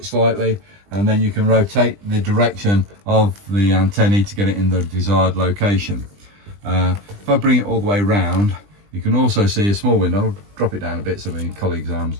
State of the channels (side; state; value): left; late; 20 ms